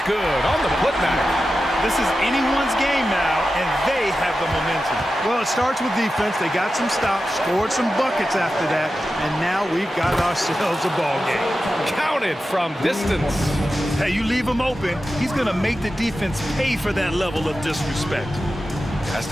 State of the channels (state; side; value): normal; both; correlation 0.92